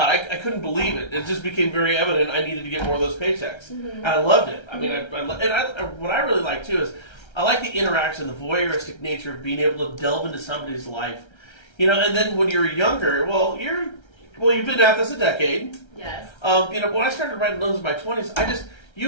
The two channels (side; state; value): right; late; 1.3 ms